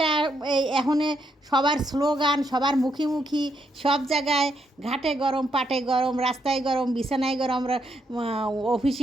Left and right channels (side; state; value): both; normal; correlation 0.77